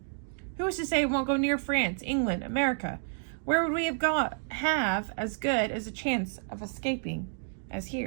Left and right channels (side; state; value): left; silent; digital silence